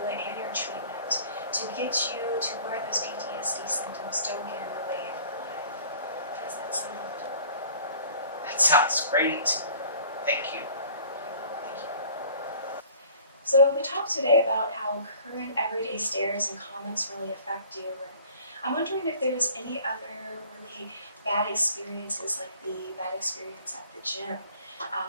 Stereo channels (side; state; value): both; inverted; correlation -0.51